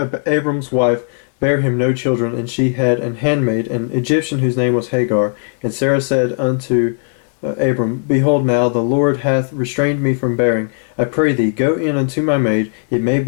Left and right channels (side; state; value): right; silent; digital silence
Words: Abram's wife, bare him no children, and she had an handmaid, an Egyptian, whose name was Hagar. And Sarah said unto Abram, Behold, now the Lord hath restrained me from bearing. I pray thee, go in unto my maid. It may